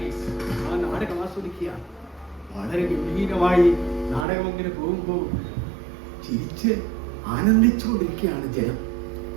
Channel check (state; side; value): drops out; left; at 4.2 s